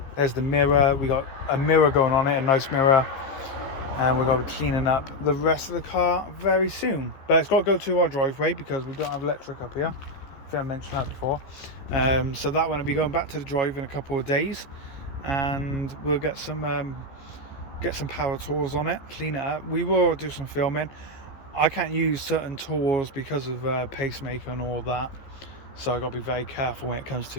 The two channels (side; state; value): right; late; 15 ms